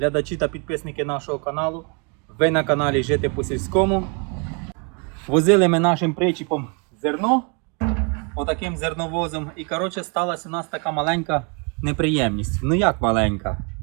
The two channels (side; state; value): left; quieter; 35.1 dB